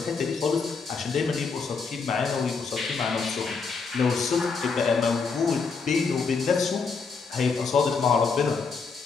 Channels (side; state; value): right; quieter; 4.9 dB